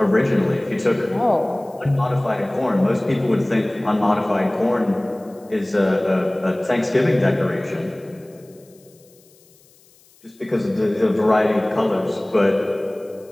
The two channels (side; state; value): left; noise; hiss, 30 dB below the sound